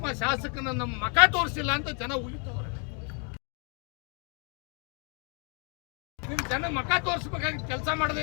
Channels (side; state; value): right; quieter; 37.4 dB